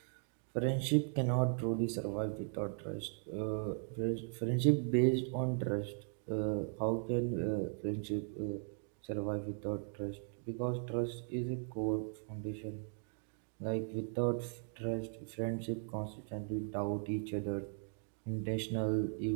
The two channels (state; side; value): silent; left; 52 dB below the other